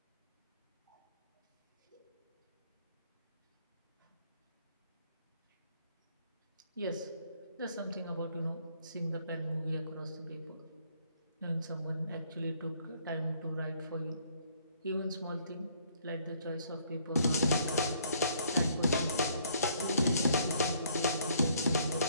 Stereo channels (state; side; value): inverted; both; correlation -0.65